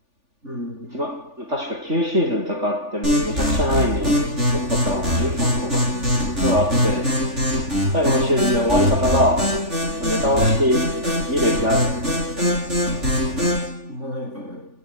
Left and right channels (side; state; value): left; late; 3.4 ms